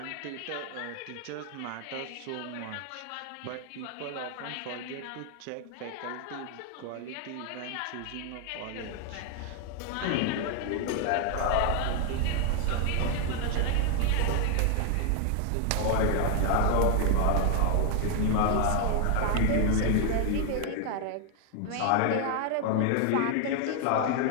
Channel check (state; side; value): different; both; correlation 0.00